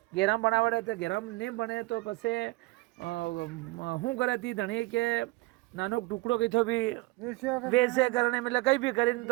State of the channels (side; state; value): left; quieter; 21.6 dB